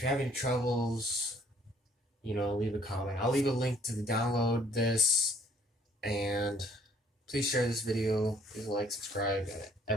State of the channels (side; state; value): both; normal; correlation 0.61